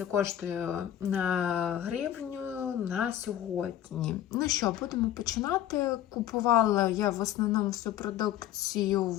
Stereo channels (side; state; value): right; quieter; 11.6 dB